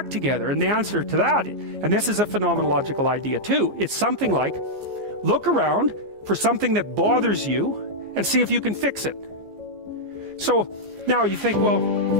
together? And the answer to that, and this is a phenomenological idea too, it's something like, look around for something that bothers you and see if you can fix it. So now you think, well,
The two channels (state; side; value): late; left; 15 ms